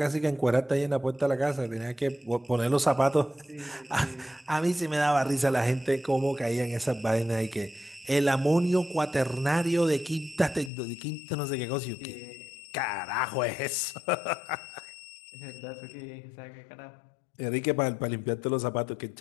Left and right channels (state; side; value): drops out; right; at 10.7 s